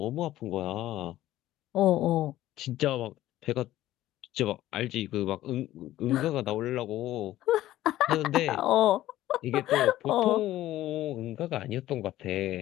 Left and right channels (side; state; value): right; quieter; 14.6 dB